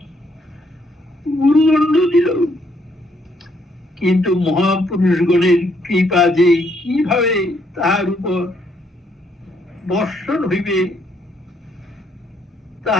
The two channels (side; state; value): both; normal; correlation 0.71